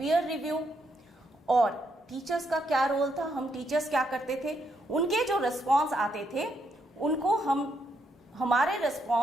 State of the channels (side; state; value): both; normal; correlation 0.77